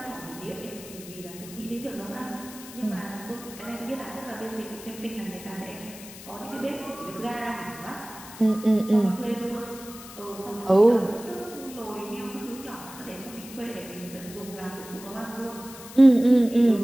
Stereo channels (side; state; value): left; noise; hiss, 15 dB below the sound